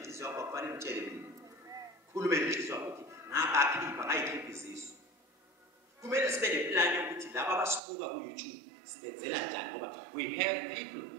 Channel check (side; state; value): left; drops out; at 7.8 s